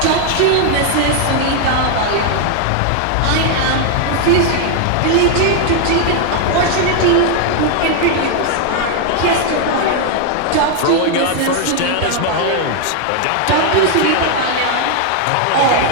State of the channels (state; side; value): different; both; correlation 0.00